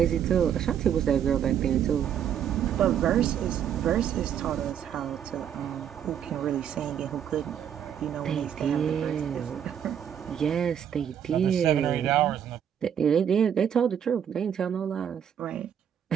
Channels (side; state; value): left; quieter; 9.0 dB